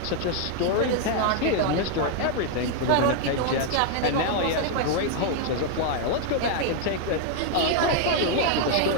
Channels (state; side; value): different; both; correlation 0.00